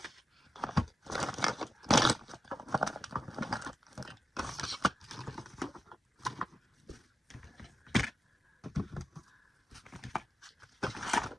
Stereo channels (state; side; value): normal; both; correlation 0.90